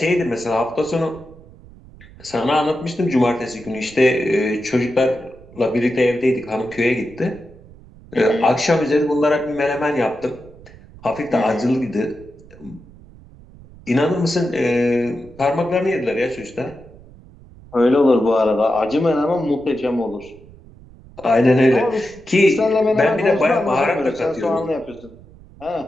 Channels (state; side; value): noise; right; rumble, 22 dB below the sound